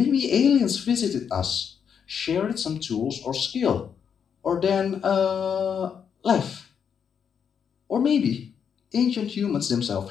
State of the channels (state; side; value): quieter; right; 7.4 dB